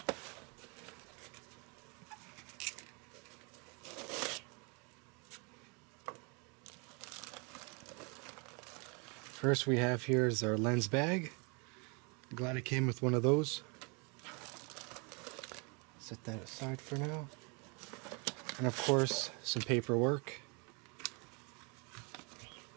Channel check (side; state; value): left; quieter; 32.5 dB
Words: First we have here is our lens bag. Glad it came with one of those. Set that aside for now. And of course, some paperwork.